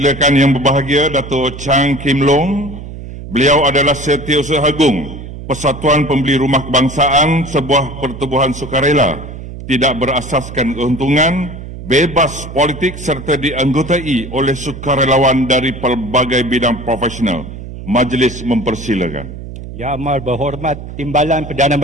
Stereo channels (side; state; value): right; noise; hum, 11 dB below the sound